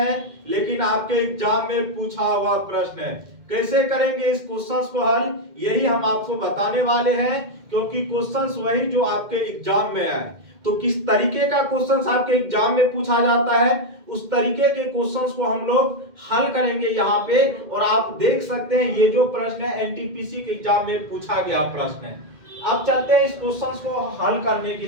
लेकिन आपके एग्जाम में पूछा हुआ प्रश्न है। कैसे करेंगे इस क्वेश्चंस को हल, यही हम आपको बताने वाले हैं, क्योंकि क्वेश्चंस वही जो आपके एग्जाम में आए। तो किस तरीके का क्वेश्चंस आपके एग्जाम में पूछा जाता है, उस तरीके के क्वेश्चंस को हम लोग हल करेंगे यहाँ पे। और आप देख सकते हैं ये जो प्रश्न है एनटीपीसी के एग्जाम में पूछा गया प्रश्न है। अब चलते हैं इस क्वेश्चंस को हल करने के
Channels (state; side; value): late; left; 2.1 ms